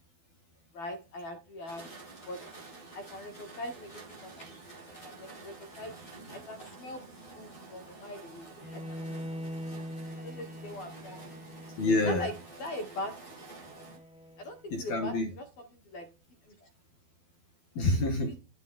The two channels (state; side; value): late; right; 12 ms